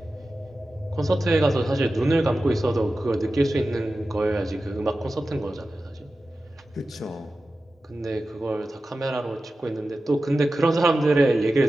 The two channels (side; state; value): both; normal; correlation 0.94